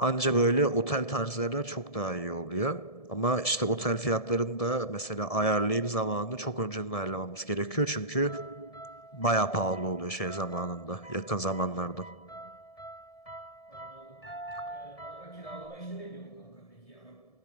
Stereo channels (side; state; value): right; late; 1.7 ms